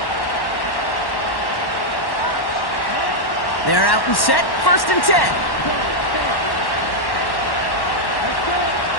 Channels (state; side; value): late; right; 1.1 ms